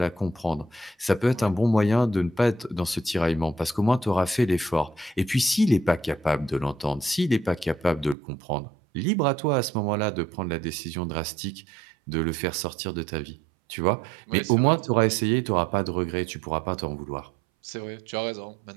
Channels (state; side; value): drops out; left; at 8.2 s